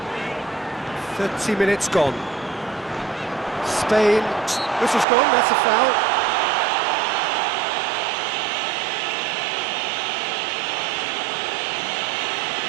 "30 minutes gone. Spain, this is gone, that's a foul.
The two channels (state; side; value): drops out; left; at 5.1 s